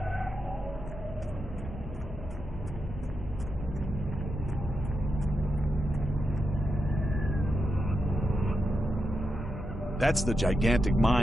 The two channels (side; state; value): both; normal; correlation 0.87